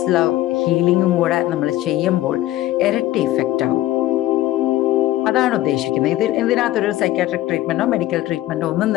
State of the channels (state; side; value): quieter; right; 15.4 dB